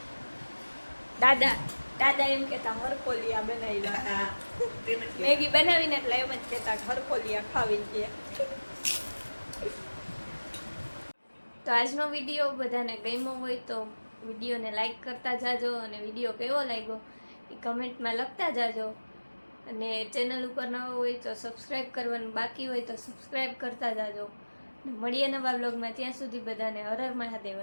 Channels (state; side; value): inverted; both; correlation -1.00